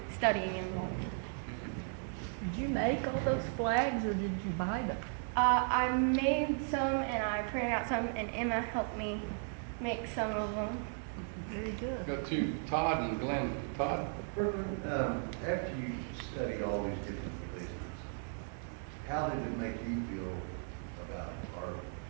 involved. Did you make all those flags, or did you buy them? I made some, and I printed out some, and Emma helped me make some of them. Very good. Go to Todd and Glenn. Todd? After you studied all these different religions, how did it make you feel about art?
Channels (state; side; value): silent; left; 54 dB below the other